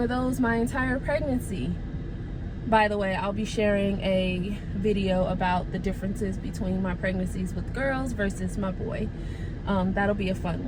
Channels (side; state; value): both; identical; correlation 1.00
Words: of those my entire pregnancy. By the way, I'll be sharing a video about the differences between my pregnancies with girls versus my boy. That'll be a fun